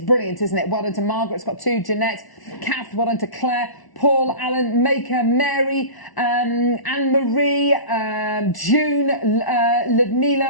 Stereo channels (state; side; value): late; right; 1.1 ms